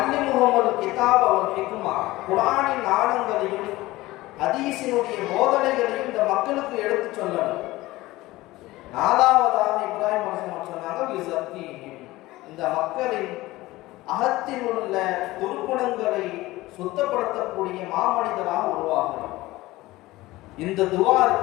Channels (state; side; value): quieter; right; 18.6 dB